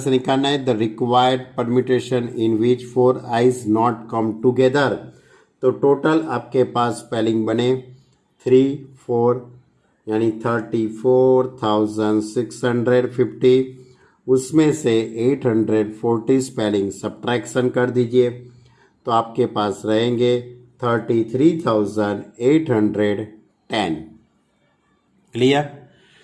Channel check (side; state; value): both; identical; correlation 1.00